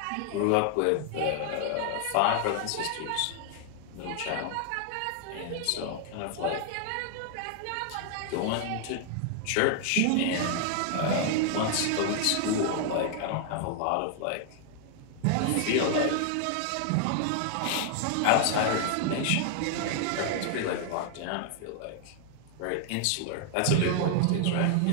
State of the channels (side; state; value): both; different; correlation 0.00